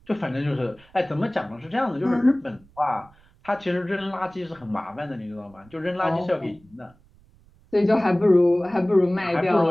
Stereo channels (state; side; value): noise; right; rumble, 29 dB below the sound